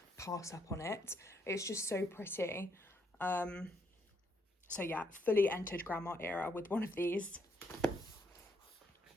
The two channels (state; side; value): normal; both; correlation 0.74